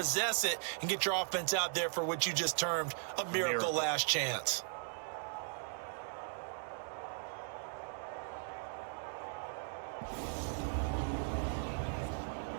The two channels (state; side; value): silent; left; digital silence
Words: it, and get your offense out there for what you just termed a miracle last chance.